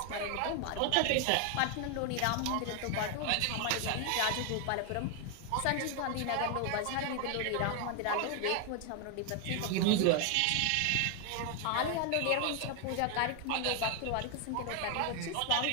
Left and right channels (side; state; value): both; different; correlation 0.00